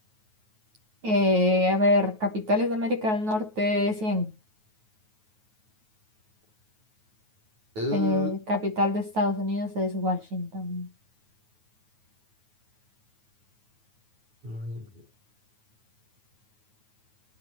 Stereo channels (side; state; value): left; late; 9.3 ms